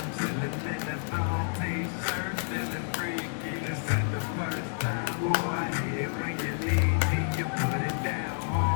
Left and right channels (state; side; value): silent; right; digital silence